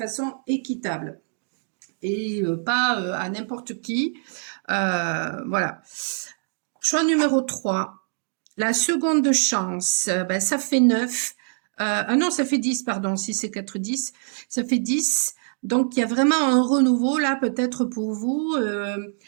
équitable et pas à n'importe qui. Voilà. Choix numéro 3. La seconde chance, ça fait 9. Ah non, ça fait 10, pardon, si c'est 4, 10. Ça fait 10. Donc, il y a vraiment un renouveau là, peut-être pour vous.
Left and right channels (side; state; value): left; silent; digital silence